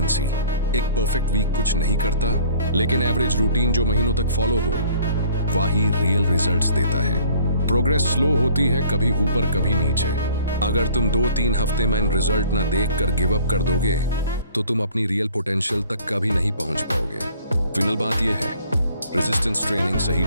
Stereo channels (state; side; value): inverted; both; correlation -0.54